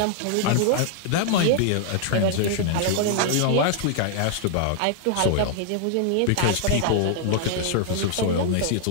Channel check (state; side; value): different; both; correlation -0.01